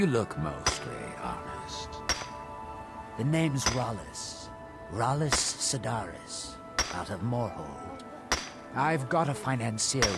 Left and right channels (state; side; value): identical; both; correlation 1.00